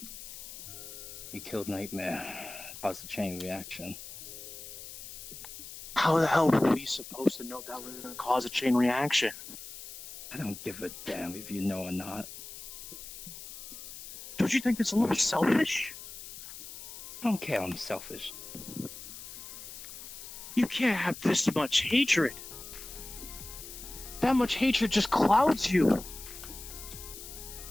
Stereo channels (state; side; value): noise; left; hiss, 12 dB below the sound